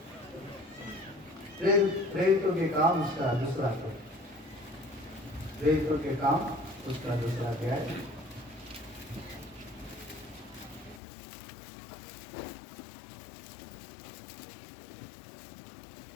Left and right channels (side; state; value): right; drops out; at 11.0 s